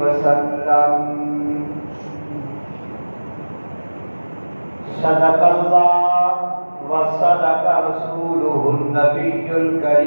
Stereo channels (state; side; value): inverted; both; correlation -1.00